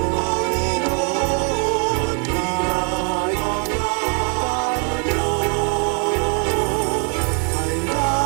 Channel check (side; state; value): left; quieter; 38.8 dB